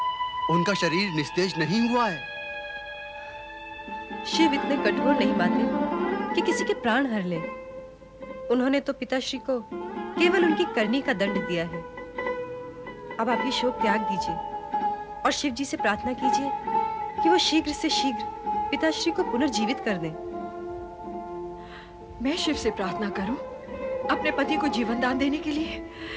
उनका शरीर निस्तेज नहीं हुआ है। शिव इतने कठोर नहीं माते कि किसी के प्राण हर ले। उन्होंने तो पिताश्री को केवल उनकी करनी का दंड दिया है। अब आप ये शोक त्याग दीजिए और शिव जी से प्रार्थना कीजिए कि वो शीघ्र से शीघ्र पिताश्री को पुनर्जीवित कर दें। मैं शिव से प्रार्थना करूं अपने पति को जीवन दान देने के लिए?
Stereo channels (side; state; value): both; identical; correlation 1.00